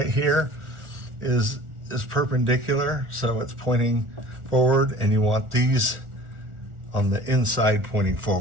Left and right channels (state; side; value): late; left; 1.4 ms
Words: here is perpendicular, so it's pointing forward, and you want these on the inside pointing